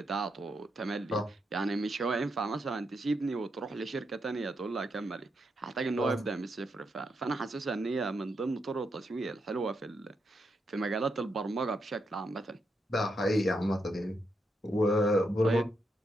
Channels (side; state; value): both; normal; correlation 0.82